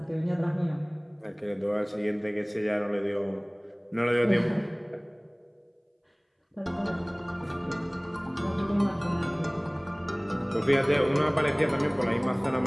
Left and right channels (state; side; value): identical; both; correlation 1.00